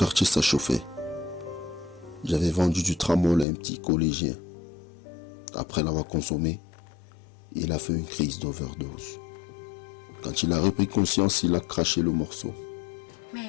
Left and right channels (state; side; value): drops out; right; at 3.5 s